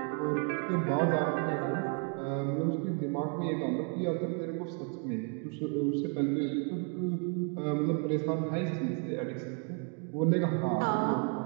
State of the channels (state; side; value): quieter; left; 38.6 dB